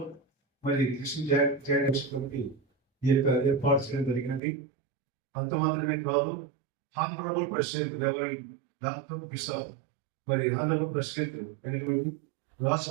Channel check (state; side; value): drops out; left; at 4.4 s